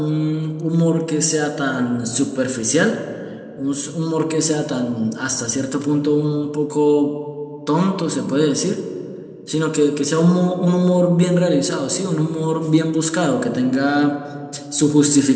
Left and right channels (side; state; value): both; identical; correlation 1.00